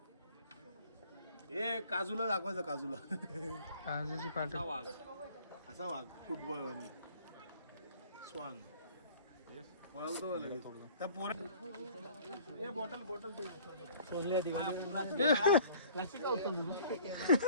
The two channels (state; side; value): inverted; both; correlation -0.51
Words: हे काजूला दाखवायचं. काजूची पाट. असा वाघ फुटबॉल स्वान. त्या पोरा